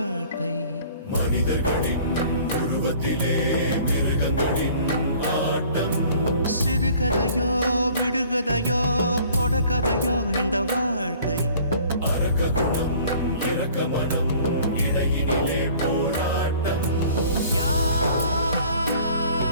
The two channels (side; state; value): both; inverted; correlation -0.52